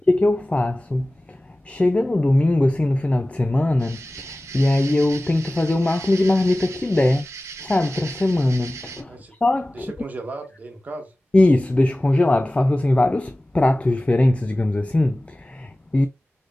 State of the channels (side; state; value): both; normal; correlation 0.97